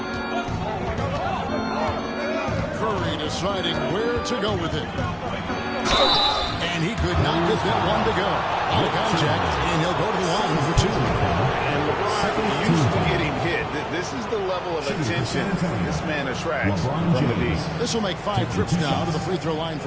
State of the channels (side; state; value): both; identical; correlation 1.00